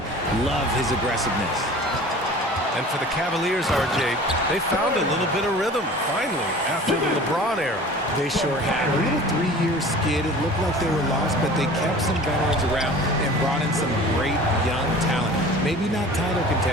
Love his aggressiveness. And for the Cavaliers, RJ, they found a little bit of rhythm, finally, after the LeBron era. They sure had. A little 3-year skid. It looked like they were lost, but they kept some veterans around and brought in some great young talent. Maybe not title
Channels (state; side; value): normal; both; correlation 0.42